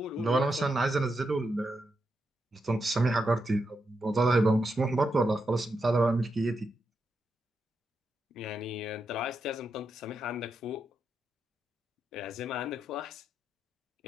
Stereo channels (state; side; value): normal; both; correlation 0.84